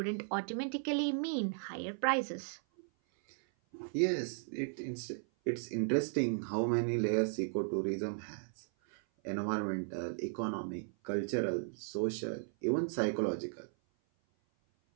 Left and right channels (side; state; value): left; silent; 54 dB below the other